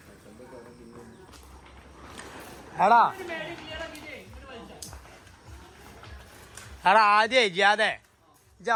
എടാ എടാ ആദ്യേ ജിയാതെ ഇജ്ജ്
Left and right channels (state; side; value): identical; both; correlation 1.00